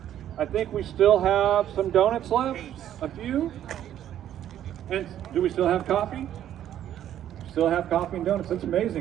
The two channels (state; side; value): quieter; left; 11.2 dB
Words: I think we still have some donuts left, a few. And do we still have coffee? Still have coffee and donuts. That's